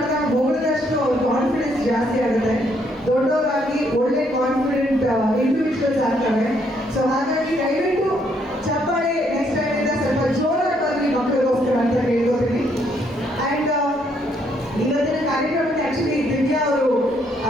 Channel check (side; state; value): both; normal; correlation 0.71